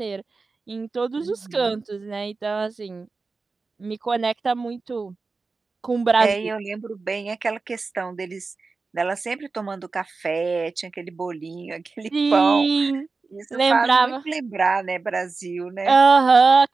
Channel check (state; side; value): quieter; left; 4.1 dB